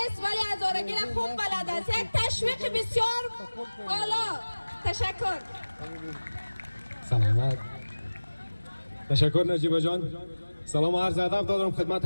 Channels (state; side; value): inverted; both; correlation -1.00